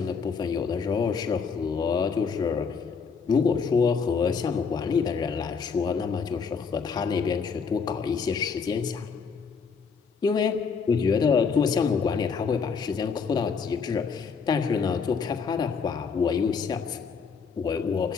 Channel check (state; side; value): quieter; right; 5.6 dB